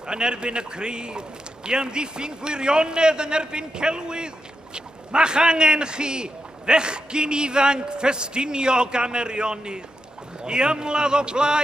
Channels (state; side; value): normal; both; correlation 0.86